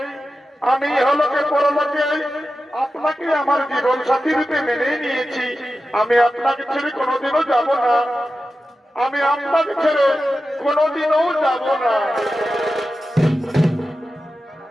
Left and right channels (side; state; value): both; normal; correlation 0.93